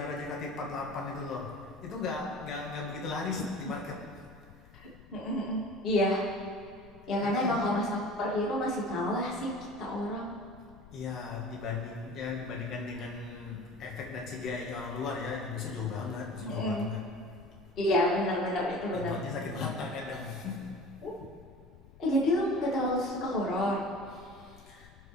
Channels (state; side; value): noise; left; rumble, 21 dB below the sound